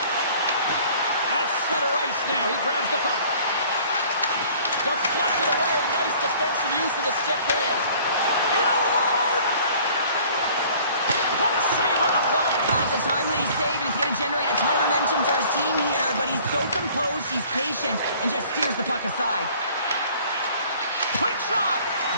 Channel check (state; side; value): inverted; both; correlation -0.52